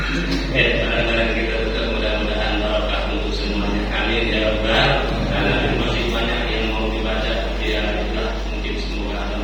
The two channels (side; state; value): both; identical; correlation 1.00